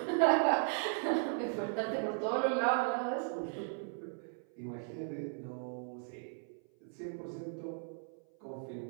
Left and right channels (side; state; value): left; silent; 53 dB below the other